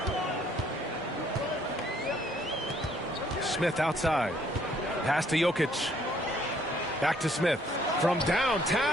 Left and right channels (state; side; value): normal; both; correlation 0.64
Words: Smith outside. Pass to Jokic. Back to Smith. From